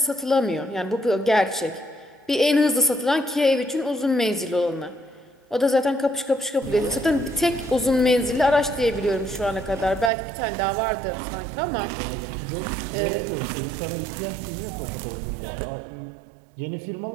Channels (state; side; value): drops out; left; at 10.1 s